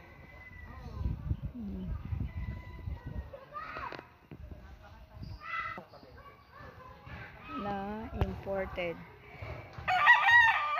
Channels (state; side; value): identical; both; correlation 1.00